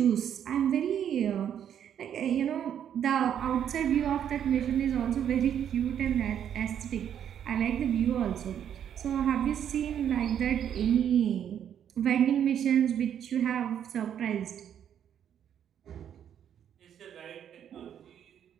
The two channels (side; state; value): left; quieter; 9.3 dB